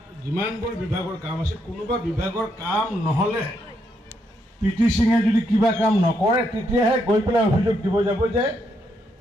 যিমানবোৰ বিভাগৰ কাম আছে, কোনোবা বিভাগৰ কাম নহ'লে PT সিঙে যদি কিবা কাম নকৰে তেতিয়াহে গৈ পেলাই অভিযোগ দিব যাব যে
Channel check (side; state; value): both; normal; correlation 0.77